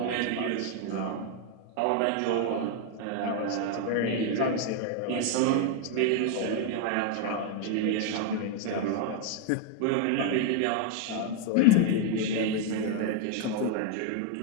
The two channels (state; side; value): different; both; correlation 0.01